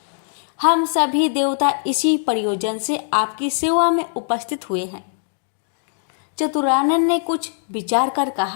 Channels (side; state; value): right; silent; digital silence